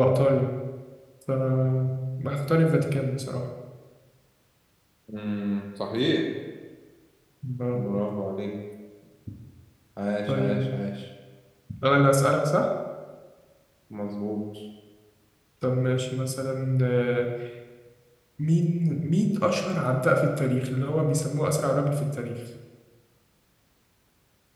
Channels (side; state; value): both; identical; correlation 1.00